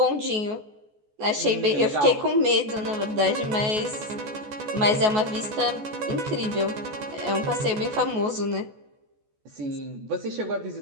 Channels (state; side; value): late; left; 14 ms